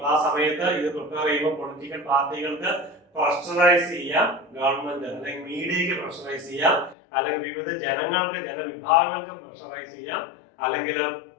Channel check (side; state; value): right; drops out; at 7.0 s